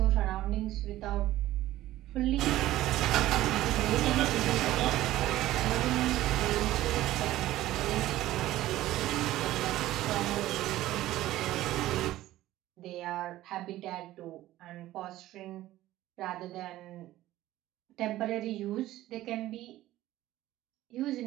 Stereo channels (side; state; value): left; quieter; 15.2 dB